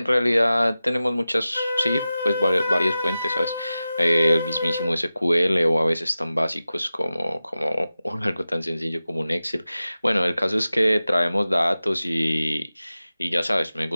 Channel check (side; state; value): both; inverted; correlation -0.94